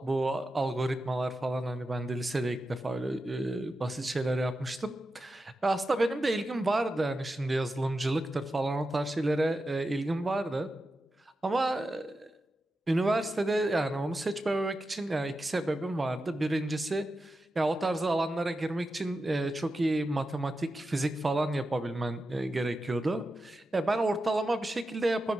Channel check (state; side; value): normal; both; correlation 0.90